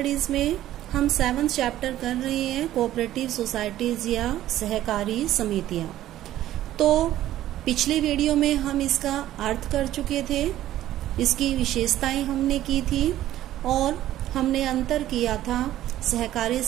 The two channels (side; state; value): left; quieter; 13.5 dB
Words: में हम 7th chapter कर रहे हैं कोऑपरेटिव सोसाइटीज या सहकारी समितियां। तो पिछले वीडियो में हम इसका अर्थ कर चुके थे, इसकी विशेषताएं हमने की थी और हमने अंतर किया था सहकारी